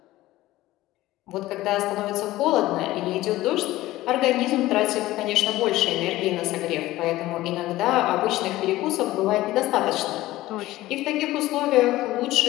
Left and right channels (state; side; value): quieter; right; 16.7 dB